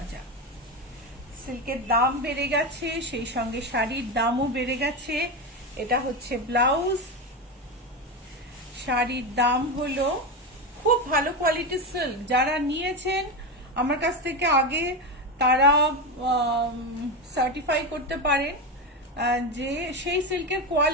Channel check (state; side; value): normal; both; correlation 0.16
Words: সিল্কের দাম বেড়ে গেছে, সেই সঙ্গে শাড়ির দামও বেড়ে গেছে। এটা হচ্ছে ব্লাউজ। শাড়ির দাম হলো, খুব ভালো কোয়ালিটির সিল্ক, যারা নিয়েছেন আমার কাছ থেকে আগে তারা সার্টিফাই করতে পারেন যে সেই সিল্কের